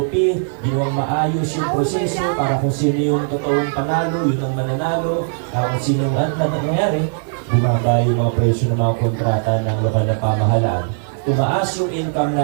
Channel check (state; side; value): silent; left; 67 dB below the other